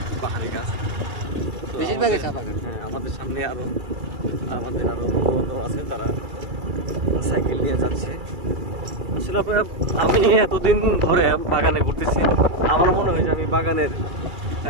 পাহাড়ি গাছ। হ্যাঁ, আমাদের সামনে আমাদের আরো বন্ধু আছে, তারা সাইকেল নিয়ে যাচ্ছে। আসলে আমি এতদিন ধরে বাগানে ঘুরতেছি, আমার মনে হয় যে আমি বাগানের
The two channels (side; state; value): left; late; 2.3 ms